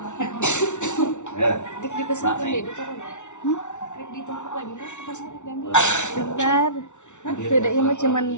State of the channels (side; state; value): right; late; 0.84 ms